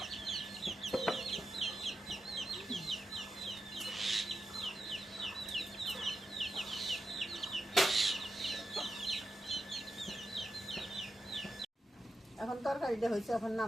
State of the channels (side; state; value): both; normal; correlation 0.88